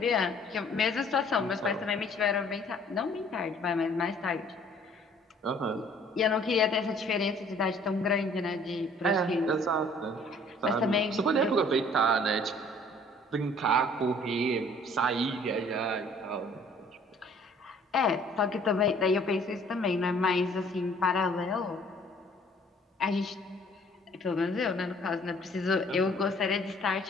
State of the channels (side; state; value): both; normal; correlation 0.56